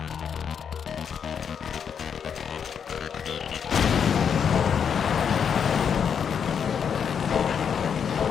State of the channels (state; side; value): quieter; right; 7.3 dB